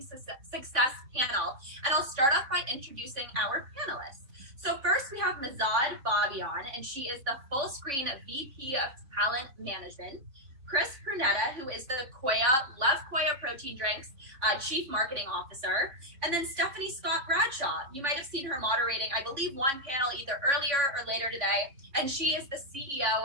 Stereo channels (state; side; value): late; left; 3.6 ms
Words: panel, and I'll start off by introducing our panelists. So first we have Mahzad Babayan, and she is the full screen VP of Talent Management. Chris Pruneda, who is the Love Koya Protein Drinks Chief Marketing Officer. And then Stephanie Scott-Bradshaw. You might have seen her moderating, I believe, one panel either earlier or later today. And she is the CEO